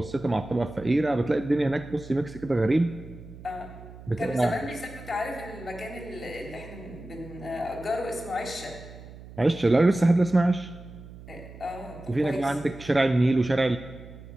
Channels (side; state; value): right; noise; hum, 17 dB below the sound